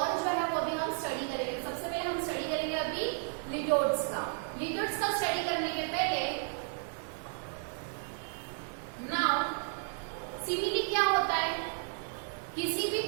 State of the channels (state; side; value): silent; left; 56 dB below the other